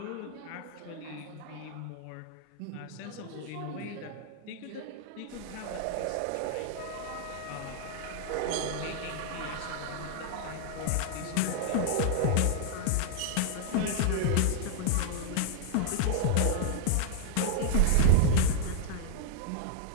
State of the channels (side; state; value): both; different; correlation 0.00